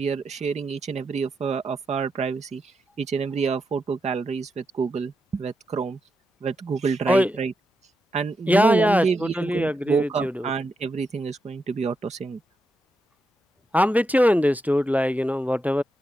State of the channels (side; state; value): both; normal; correlation 0.85